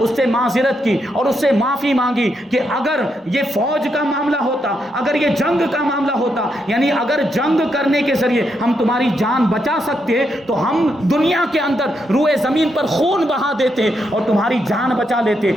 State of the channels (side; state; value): both; normal; correlation 0.80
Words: سے معذرت کی اور اس سے معافی مانگی کہ اگر یہ فوج کا معاملہ ہوتا، اگر یہ جنگ کا معاملہ ہوتا، یعنی اگر جنگ کرنے کے ذریعے ہم تمہاری جان بچا سکتے تو ہم دنیا کے اندر روئے زمین پر خون بہا دیتے اور تمہاری جان بچا لیتے،